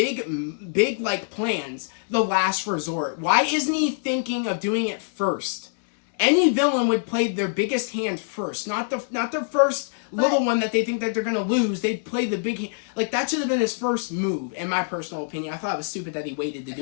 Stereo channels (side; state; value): right; silent; digital silence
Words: like plans the last resort. Why isn't he thinking of doing it first? Any villain would play their biggest hand first, not the first little one that they think that they're gonna lose. They'd play the big hand. Like that should have been his first move, in my personal opinion. I thought it was stupid that he waited to